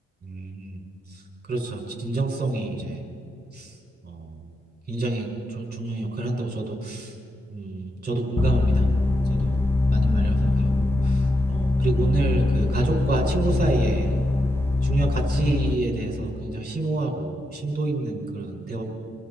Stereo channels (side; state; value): both; normal; correlation 0.84